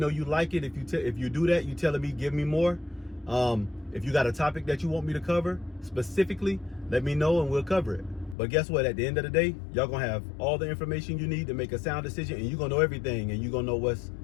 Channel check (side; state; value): right; drops out; at 8.3 s